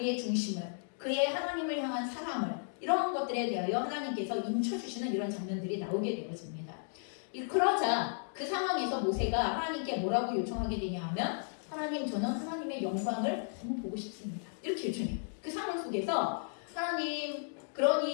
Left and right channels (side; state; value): right; silent; digital silence